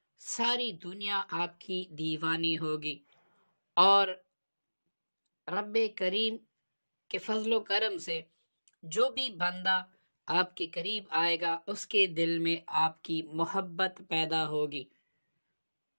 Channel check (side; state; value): both; inverted; correlation -1.00